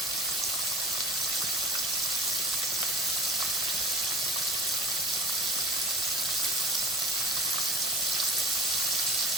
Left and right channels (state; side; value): normal; both; correlation 0.40